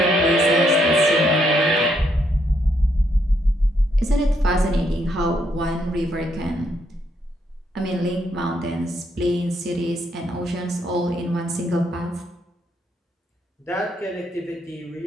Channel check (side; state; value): both; normal; correlation 0.74